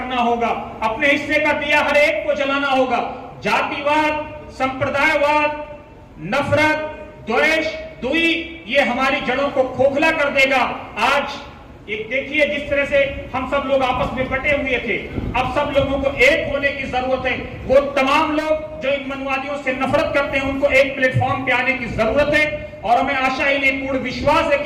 होगा, अपने हिस्से का दिया हर एक को जलाना होगा। जातिवाद, संप्रदायवाद, नफरत, द्वेष, दुई, ये हमारी जड़ों को खोखला कर देगा। आज एक देखिए जिस तरह से हम सब लोग आपस में बटे हुए थे, अब सब लोगों को एक होने की जरूरत है। वो तमाम लोग जो इन मनवादियों से नफरत करते हैं, उनको एक प्लेटफॉर्म पे आने की जरूरत है। और हमें आशा ही नहीं, पूर्ण विश्वास है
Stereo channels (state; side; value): identical; both; correlation 1.00